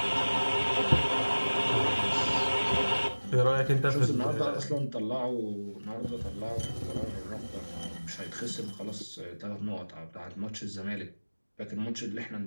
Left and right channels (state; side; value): inverted; both; correlation -1.00